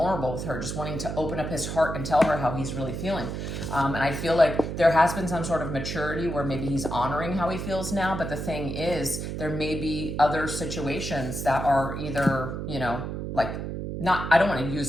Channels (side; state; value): right; noise; hum, 5 dB below the sound